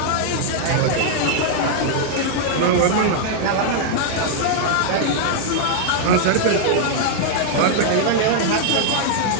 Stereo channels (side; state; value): both; different; correlation -0.01